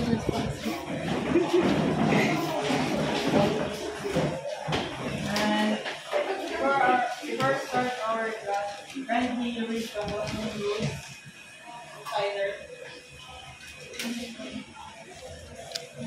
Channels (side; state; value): both; identical; correlation 1.00